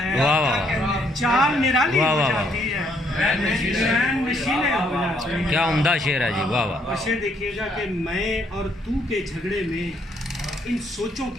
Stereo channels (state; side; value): normal; both; correlation 0.69